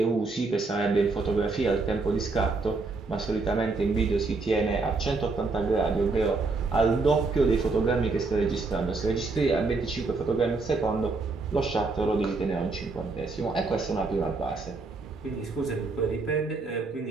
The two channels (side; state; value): left; quieter; 3.8 dB